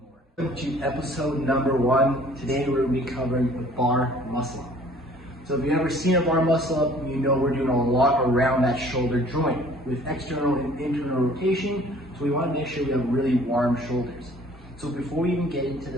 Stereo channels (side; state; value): both; normal; correlation 0.53